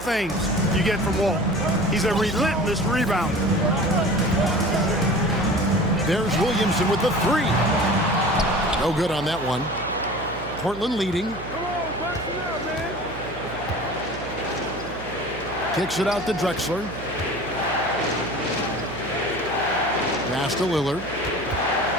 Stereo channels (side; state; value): right; noise; hum, 14 dB below the sound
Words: you get from Walton. He's a relentless rebounder. There's Williamson with the 3. No good on that one. Portland leading. Kicks it out to Drexler. Pass to Lillard.